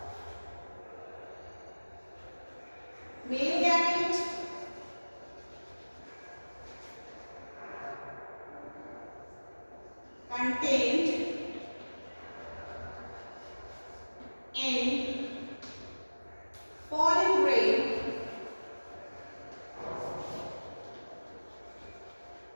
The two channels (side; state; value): both; inverted; correlation -1.00